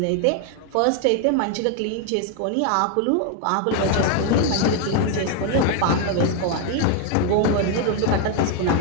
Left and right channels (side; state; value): both; different; correlation 0.00